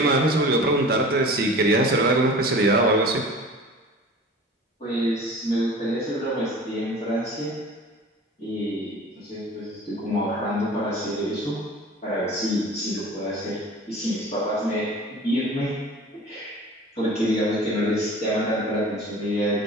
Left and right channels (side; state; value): both; normal; correlation 0.41